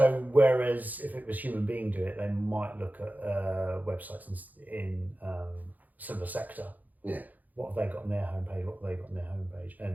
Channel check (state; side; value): late; left; 0.081 ms